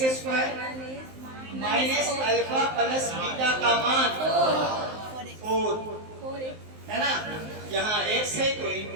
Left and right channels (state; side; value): late; left; 19 ms